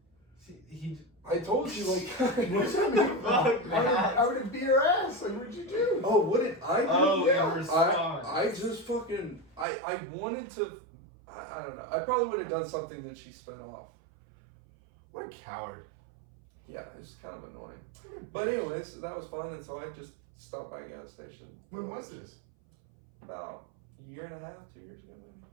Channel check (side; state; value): left; drops out; at 9.7 s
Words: See, I told you, What's that mean? Fuck, man. I would have beat her ass. What'd you do? oh, what did I do? Oh, Yeah. in response. I just fucking, I wanted to, I don't know. I probably would have done something that she sped off. What a coward. Yeah, it was kind of annoying. But anyways, that was fun, and so I just stopped by a gas station. When was this? About a year and a half, 2 years ago maybe.